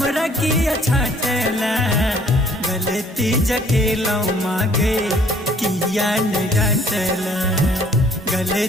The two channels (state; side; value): normal; both; correlation 0.59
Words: किया छाटेला। गलती जकेलो मागे किया न डांटला,